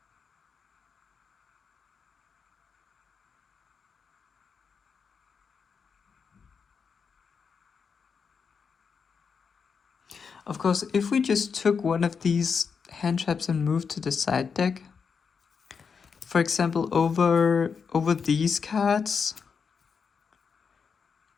Of course, if we just took one of these hand traps and moved to the side deck, for example, over these cards,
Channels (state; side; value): quieter; right; 5.9 dB